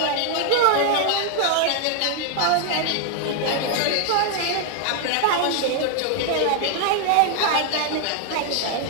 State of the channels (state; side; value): different; both; correlation 0.00